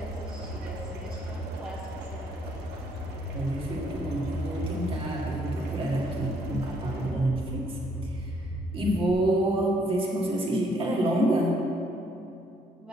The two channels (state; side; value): normal; both; correlation 0.68